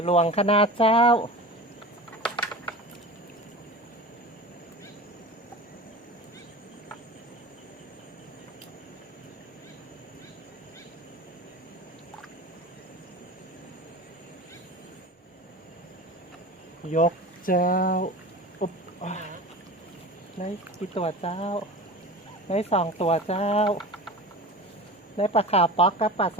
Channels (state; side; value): normal; both; correlation 0.33